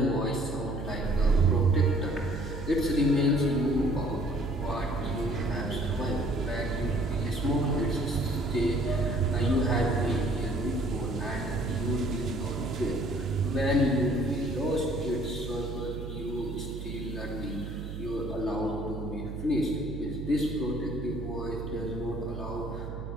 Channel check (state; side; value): noise; right; hum, 7 dB below the sound